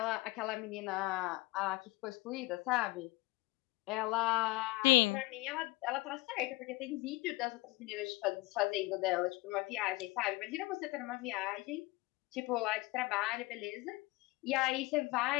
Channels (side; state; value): right; quieter; 22.4 dB